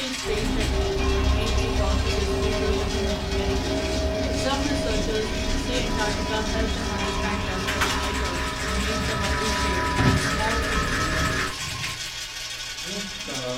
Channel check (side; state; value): both; identical; correlation 1.00